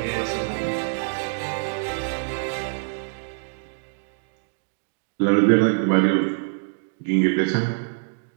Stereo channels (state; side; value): silent; left; digital silence